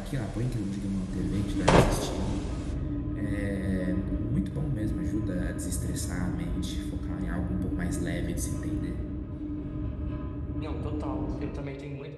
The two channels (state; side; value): identical; both; correlation 1.00